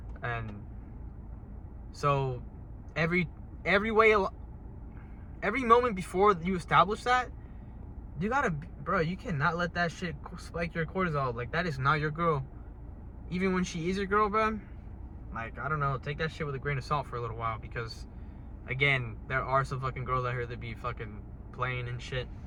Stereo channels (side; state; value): both; identical; correlation 1.00